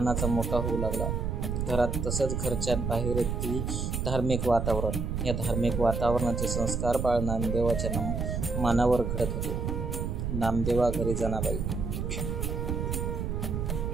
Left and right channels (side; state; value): right; noise; rumble, 1 dB below the sound